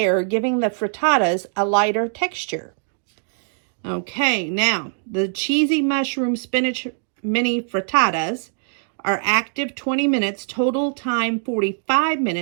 giving the frittatas a lighter texture. Okay, now, the cheesy mushroom spinach mini frittatas are active 20 minutes, total time 45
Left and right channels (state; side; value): silent; left; digital silence